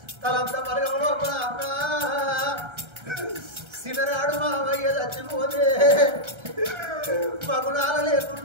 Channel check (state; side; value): late; left; 1.3 ms